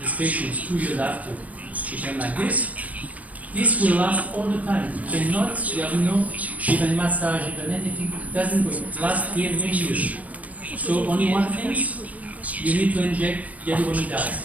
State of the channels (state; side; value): late; left; 0.070 ms